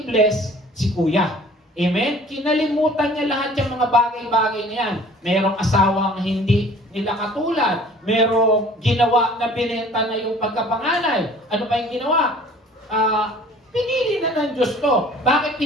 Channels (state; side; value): normal; both; correlation 0.50